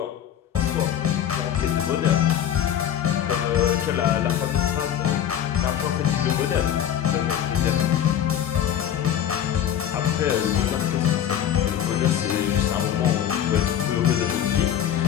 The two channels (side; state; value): right; quieter; 10.1 dB